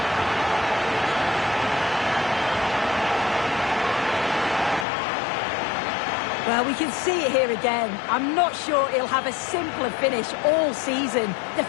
Well, we can see it here again. I'm not sure he'll have a simpler finish all season.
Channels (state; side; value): drops out; right; at 4.9 s